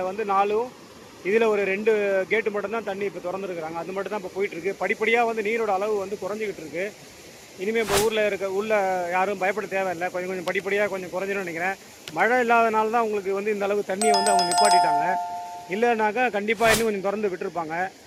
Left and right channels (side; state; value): both; identical; correlation 1.00